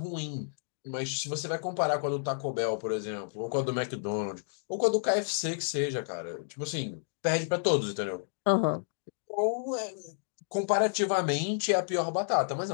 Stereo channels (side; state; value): right; silent; digital silence